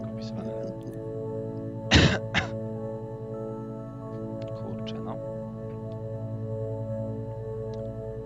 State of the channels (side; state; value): both; identical; correlation 1.00